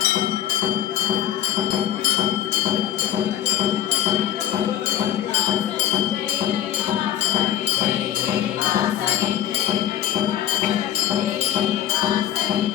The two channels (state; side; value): quieter; right; 11.5 dB